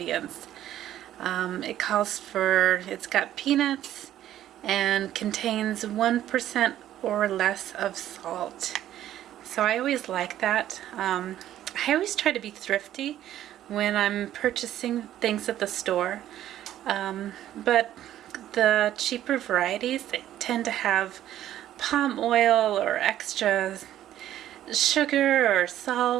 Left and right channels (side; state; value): left; quieter; 12.3 dB